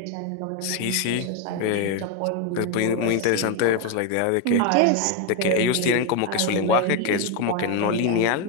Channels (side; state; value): both; different; correlation 0.01